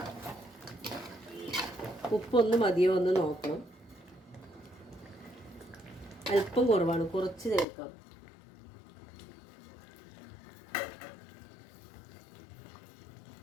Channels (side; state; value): right; drops out; at 7.7 s